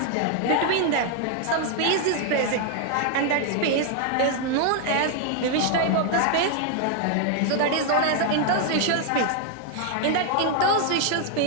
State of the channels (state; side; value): different; both; correlation 0.00